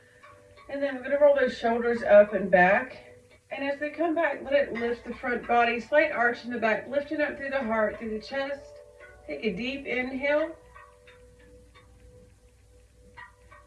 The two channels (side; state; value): both; identical; correlation 1.00